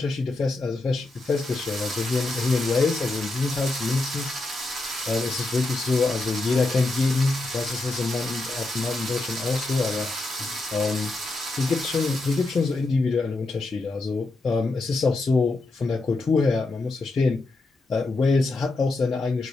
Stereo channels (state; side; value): quieter; right; 3.1 dB